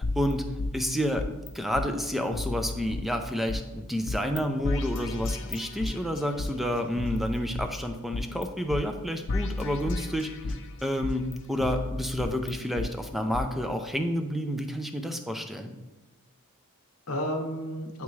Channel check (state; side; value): normal; both; correlation 0.80